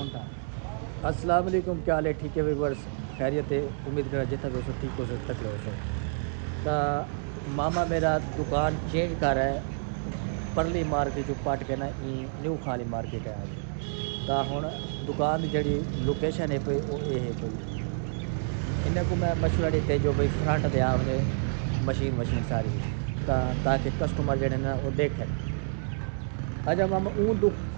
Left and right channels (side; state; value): left; silent; digital silence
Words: था। अस्सलाम वालेकुम, क्या हाल है? ठीक है व्यूअर्स, खैरियत है? उम्मीद करा जितना भी हो ठीक हो सो तक हो सो। तो मामा मेरा दुकान चेंज कर रहा है, परली मार्केट जो पट के ना न्यू खाली मार्केट है आगे। तो हुण दुकान की जी लोकेशन है पई वो ये है पई इन्हें को मैं मशवरा दीते जो भाई फ्रंट दे आवने मशीन सारी ताकि कस्टमर जड़े ना वो देखें। अच्छा मामा